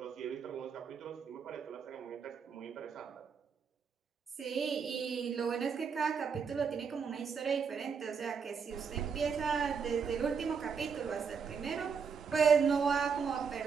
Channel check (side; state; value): left; quieter; 6.1 dB